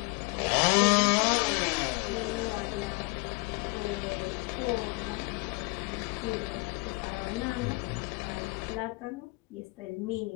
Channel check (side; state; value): right; quieter; 27.8 dB